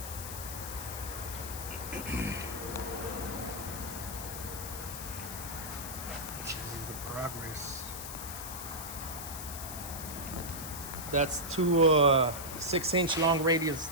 This is the progress. That's two 6-inch long radius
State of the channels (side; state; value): left; noise; hiss, 8 dB below the sound